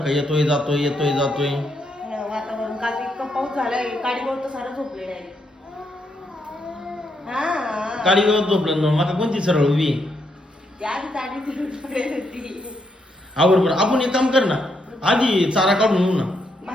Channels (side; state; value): both; normal; correlation 0.78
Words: येतोय जातोय येतोय जातोय. वातावरण काल इतकं पाऊस झालाय काडीवर तर सारं झोपलेलं आहे. हा काळी गवत झोपलं ना माका कोणती सरळ उभी आधी चाडी फिरून पडेल होती. आवर बरं आपण एक काम कर ना आधी चारा काढून येऊ ना.